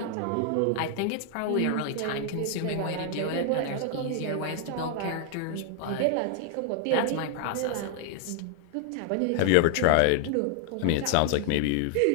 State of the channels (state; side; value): different; both; correlation 0.00